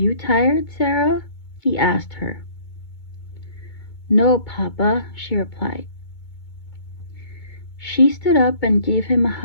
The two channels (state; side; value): late; right; 2.2 ms